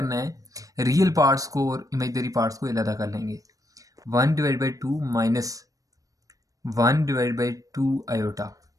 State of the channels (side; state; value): left; late; 0.16 ms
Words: है, रियल पार्ट्स को और इमेजनरी पार्ट्स को अलग कर लेंगे। 1 divide by 2 minus 1 divide by 2 iota,